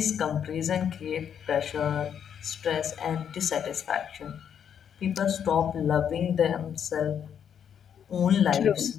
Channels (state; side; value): quieter; right; 8.4 dB